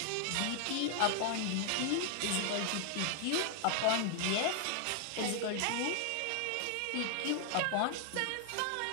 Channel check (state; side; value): different; both; correlation 0.00